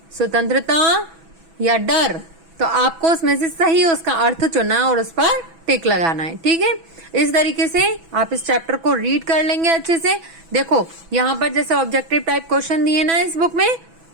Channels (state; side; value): late; left; 6.1 ms